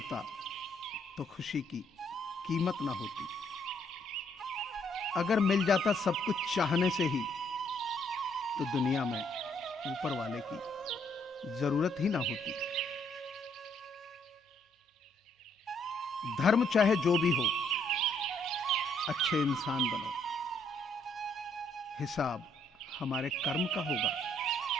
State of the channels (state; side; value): normal; both; correlation 0.69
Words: तो खुशी की कीमत ना होती, अगर मिल जाता सब कुछ चाहने से ही तो दुनिया में ऊपर वाले की जरूरत ही ना होती। धर्म चाहे जो भी हो, अच्छे इंसान बनो। हिसाब हमारे कर्म का होगा,